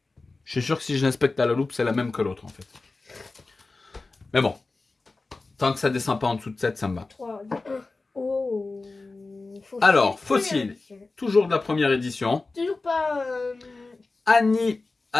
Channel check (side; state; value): right; quieter; 3.5 dB